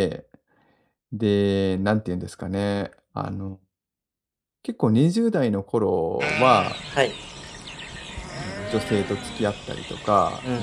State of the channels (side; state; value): both; identical; correlation 1.00